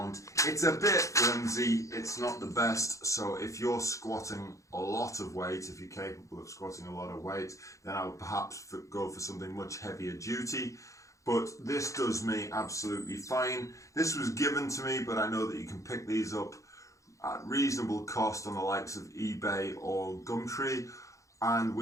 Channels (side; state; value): right; late; 0.15 ms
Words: It's a bit flimsy, it's not the best, so if you're squatting a lot of weight, if you're capable of squatting a lot of weight, then I would perhaps go for something much heavier duty. But this does me absolutely fine. This was given to me, but I know that you can pick these up at reasonable cost on the likes of eBay or Gumtree. And